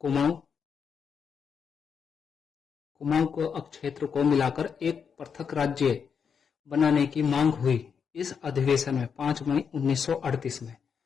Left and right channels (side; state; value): right; quieter; 6.7 dB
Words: को क्षेत्र को मिलाकर एक पृथक राज्य बनाने की मांग हुई। इस अधिवेशन में 5 मई 1938 में